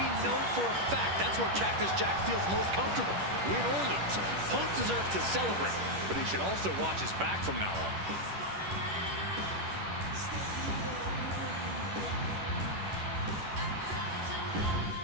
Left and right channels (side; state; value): left; late; 10 ms